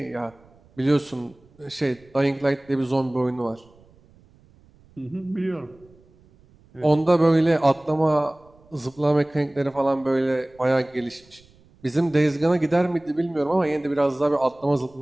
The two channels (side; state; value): right; noise; rumble, 29 dB below the sound